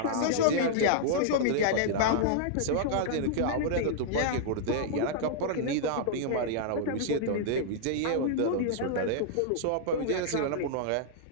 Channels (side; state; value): both; different; correlation -0.01